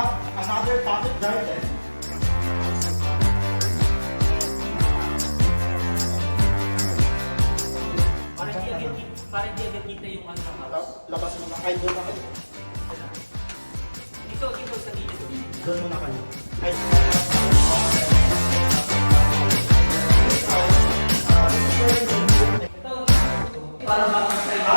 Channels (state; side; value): inverted; both; correlation -1.00